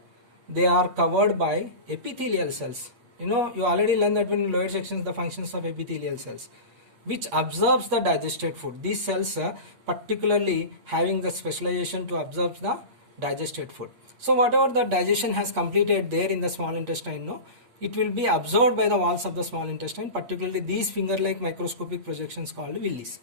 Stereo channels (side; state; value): left; late; 8.6 ms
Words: they are covered by epithelial cells. You already learned that when in lower sections the functions of epithelial cells, which absorbs the digested food. These cells particularly having the specialization to absorb the digested food. So whatever the digestion has completed there in the small intestine, it will be absorbed by the walls of the small intestine, particularly these finger-like microscopic projections called villis.